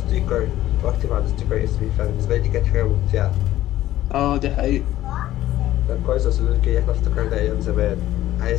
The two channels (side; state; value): right; quieter; 14.1 dB